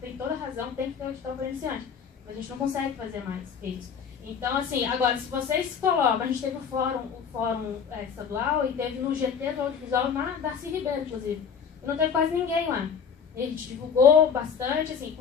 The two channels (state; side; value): quieter; right; 6.7 dB